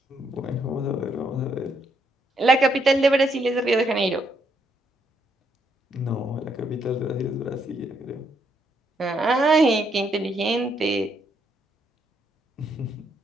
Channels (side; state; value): both; normal; correlation 0.74